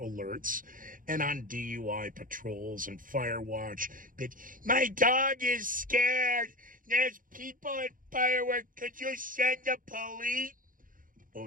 and on DUI patrols and fire watch. But my dog is scared. There's people at fireworks. Could you send the police? Oh,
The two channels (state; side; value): late; left; 0.40 ms